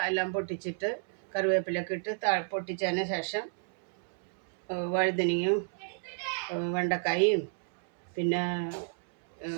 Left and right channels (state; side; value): silent; left; 57 dB below the other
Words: എല്ലാം പൊട്ടിച്ചിട്ട് കറിവേപ്പിലൊക്കെ ഇട്ട് പൊട്ടിച്ചതിന് ശേഷം വഴുതനങ്ങയും വെണ്ടക്കായും പിന്നെ